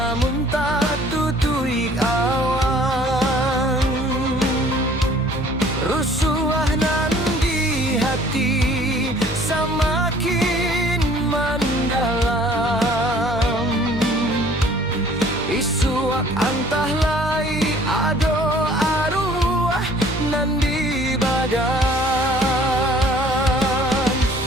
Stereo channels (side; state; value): both; normal; correlation 0.55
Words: tak tutui awan. Rusuh nan di hati semakin mendalam. Isuak antah lai ado arwah nan di badan.